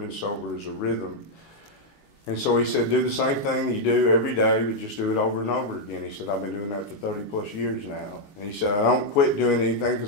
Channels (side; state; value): right; late; 19 ms